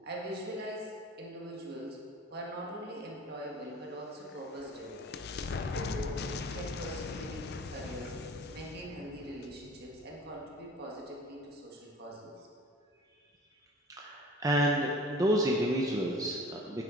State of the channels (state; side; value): normal; both; correlation 0.44